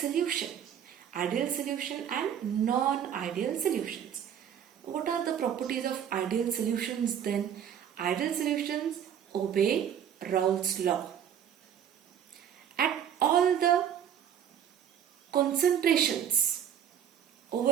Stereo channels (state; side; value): quieter; left; 9.2 dB